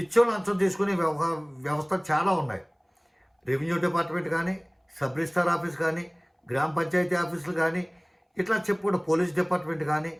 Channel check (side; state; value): both; identical; correlation 1.00